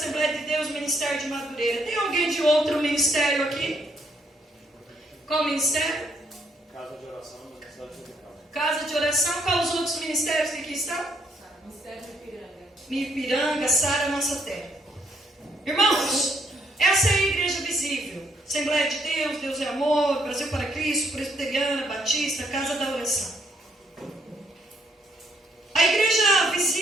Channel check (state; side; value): normal; both; correlation 0.71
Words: de Deus, Ministério de Madureira. Tem alguém de outro ministério aqui? Qual ministério? Casa de oração da cidade de Ipiranga. Casa de oração. Quais os outros ministérios que aqui estão? Ministério de Ipiranga. Ipiranga, Sara, Nossa Terra. Irmãos, essa é a igreja visível. Assembleia de Deus, Deus é Amor, Brasil para Cristo, Presbiteriana, Batista, Casa da Oração. A igreja